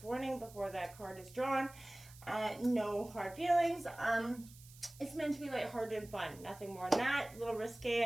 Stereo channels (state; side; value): noise; right; hiss, 21 dB below the sound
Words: warning before that card is drawn. No hard feelings. It's meant to be lighthearted and fun. Nothing more than that. A little